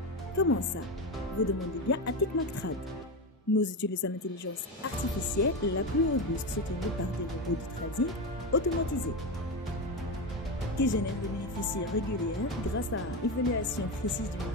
Comment ça? Vous demandez bien à TechMacTrade. Nous utilisons l'intelligence artificielle la plus robuste soutenue par des robots de trading automatisés qui génèrent des bénéfices réguliers grâce à évaluation précise du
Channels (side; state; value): both; normal; correlation 0.16